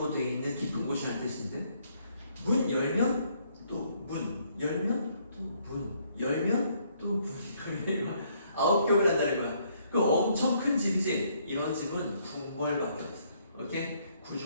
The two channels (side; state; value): both; inverted; correlation -0.68